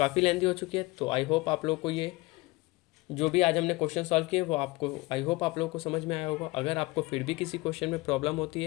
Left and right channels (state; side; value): quieter; right; 22.4 dB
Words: लेंथी हो चुकी है। तो आई होप आप लोग को ये जो भी आज हमने क्वेश्चन सॉल्व किए वो आपको आई होप आप लोगों को समझ में आया होगा। अगर आपको फिर भी किसी क्वेश्चन में प्रॉब्लम होती